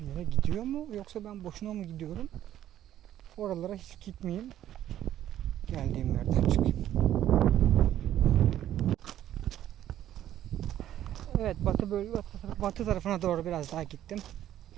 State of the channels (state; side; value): quieter; left; 11.9 dB